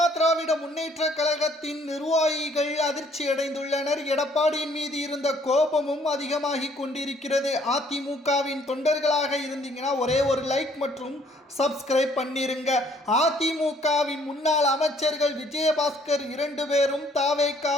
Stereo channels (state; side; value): normal; both; correlation 0.62